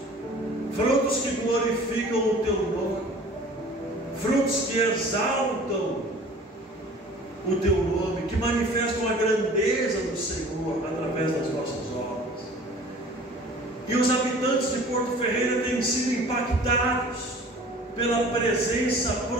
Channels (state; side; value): normal; both; correlation 0.46